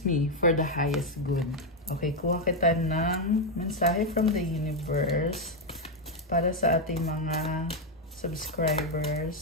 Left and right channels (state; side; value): normal; both; correlation 0.03